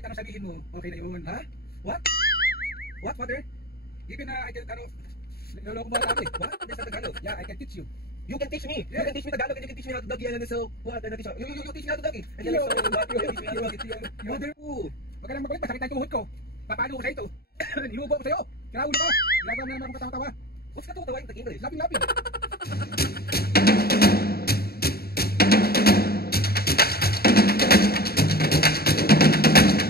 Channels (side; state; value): right; late; 0.45 ms